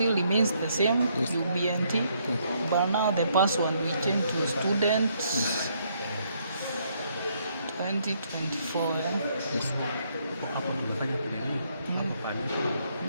remains the same, Yes. UBNT, Yes. but now the password we change to student 2024. Yes. Hapo tumefanya nini? Hapo pale.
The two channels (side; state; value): both; inverted; correlation -0.71